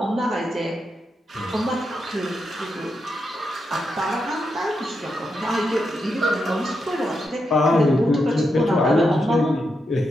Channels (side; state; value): both; normal; correlation 0.84